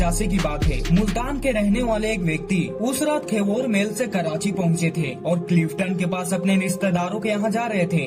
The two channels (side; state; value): both; identical; correlation 1.00